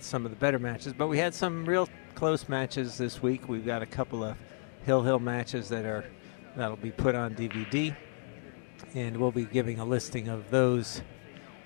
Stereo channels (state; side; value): silent; right; 56 dB below the other